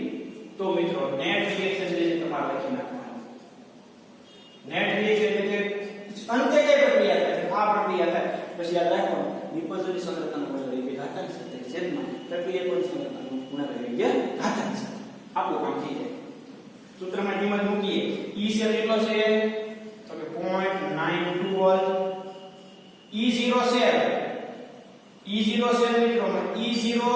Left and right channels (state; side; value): identical; both; correlation 1.00